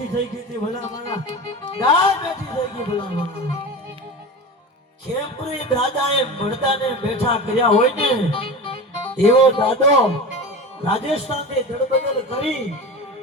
થઈ ગઈ હતી. ભલા મારા ગાય બેઠી થઈ ગઈ. ભલા મારા ખેમપુરી દાદાએ મળદાને બેઠા કર્યા હોય ને એવો દાદો રાજસ્થાનથી દળબદલ કરી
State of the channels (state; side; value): normal; both; correlation 0.29